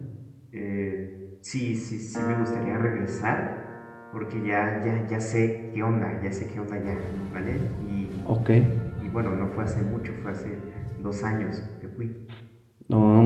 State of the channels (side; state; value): both; identical; correlation 1.00